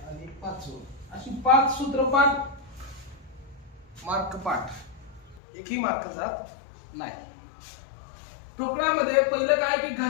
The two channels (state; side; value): drops out; right; at 5.4 s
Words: आणि पाचवं, अशी 5 सूत्रपाठ मार्क पाठ, एकही मार्क जात नाही. ठोकळामध्ये पहिलं काय की